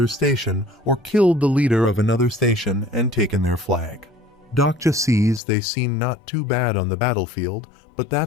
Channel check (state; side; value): drops out; right; at 5.4 s